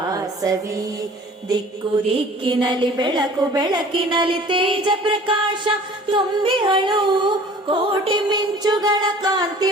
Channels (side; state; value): both; normal; correlation 0.47